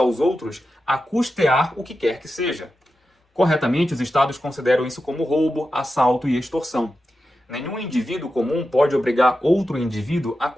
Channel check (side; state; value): both; normal; correlation 0.90